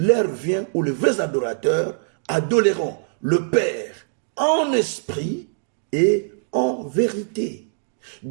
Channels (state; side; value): silent; left; digital silence